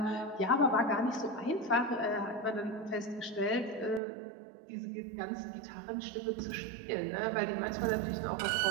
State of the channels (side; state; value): left; drops out; at 4.0 s